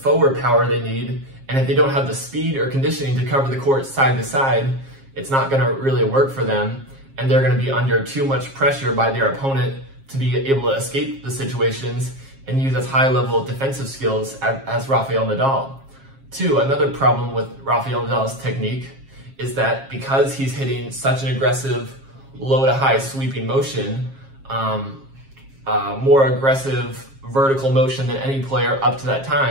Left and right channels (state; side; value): late; left; 7.4 ms